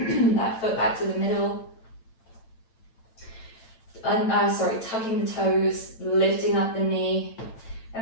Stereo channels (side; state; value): right; late; 8.9 ms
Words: that foot back to the middle. Tucking the toes, lifting up the knee.